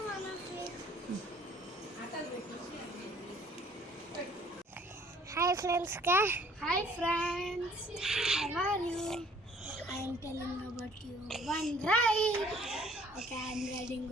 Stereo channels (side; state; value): both; normal; correlation 0.57